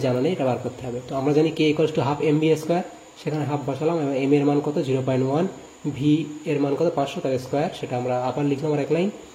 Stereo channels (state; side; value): identical; both; correlation 1.00